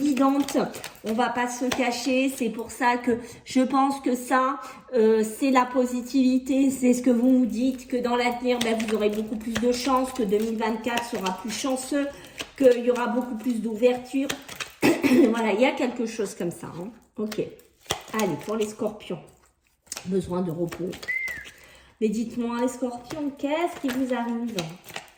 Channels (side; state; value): both; identical; correlation 1.00